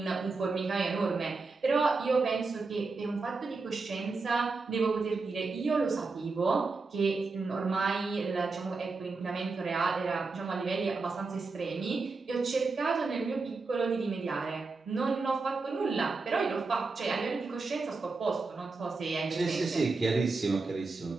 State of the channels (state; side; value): quieter; left; 4.0 dB